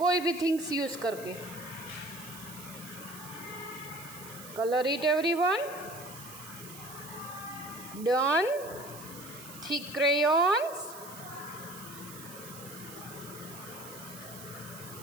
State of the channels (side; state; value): right; noise; hiss, 14 dB below the sound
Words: भी थिंग्स यूज़ करके। Color it everyone. Done. Thick crayons.